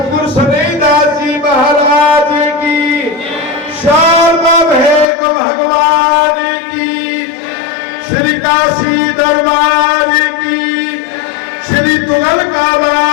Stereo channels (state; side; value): drops out; right; at 5.1 s